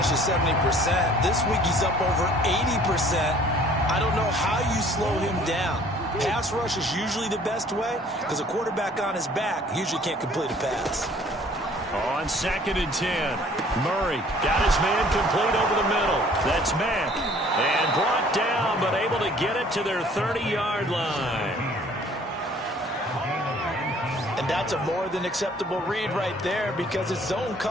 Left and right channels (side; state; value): both; normal; correlation 0.55